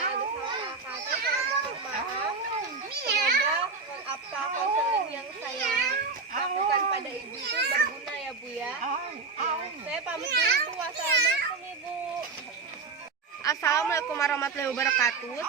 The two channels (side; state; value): left; quieter; 4.5 dB